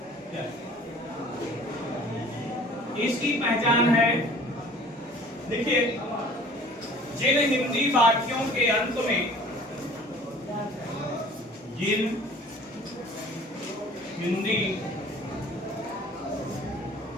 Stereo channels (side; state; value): both; normal; correlation 0.49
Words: इसकी पहचान है, देखिए, जिन हिंदी वाक्यों के अंत में, जिन हिंदी